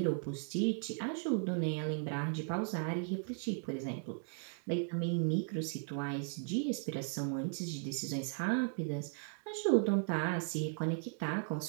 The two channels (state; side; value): silent; left; 53 dB below the other